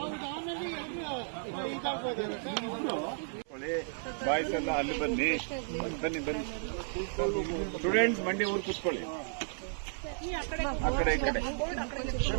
ಬಾಯ್ಸ್ ಎಲ್ಲ ಅಲ್ಲಿ ಬನ್ನಿ. ಬನ್ನಿ ಬನ್ನಿ ಸ್ಟೂಡೆಂಟ್ಸ್, ಮಂಡಿ ಊರು ಕೂತ್ಕೊಳ್ಳಿ. ಆ ಕಡೆ ಈ ಕಡೆ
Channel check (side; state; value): left; silent; 55 dB below the other